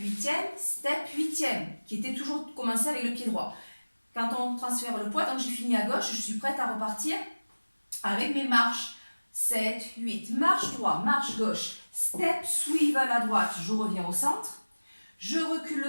huitième, qui était toujours commencé avec le pied droit. Quand on transfère le poids, donc j'ai fini à gauche, je suis prête à repartir avec mes marches. 7, 8, marche droit, marche gauche, step swivel à droite, je reviens au centre. Je recule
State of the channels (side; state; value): both; inverted; correlation -1.00